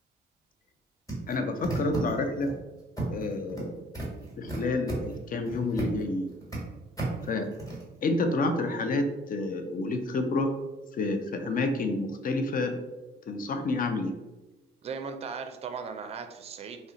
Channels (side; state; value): both; normal; correlation 0.56